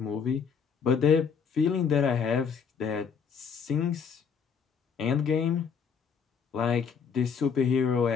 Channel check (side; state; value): right; quieter; 6.5 dB